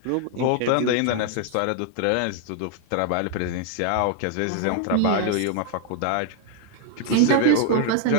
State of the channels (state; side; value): different; both; correlation 0.00